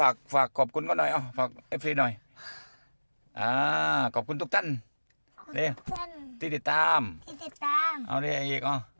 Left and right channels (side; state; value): both; inverted; correlation -1.00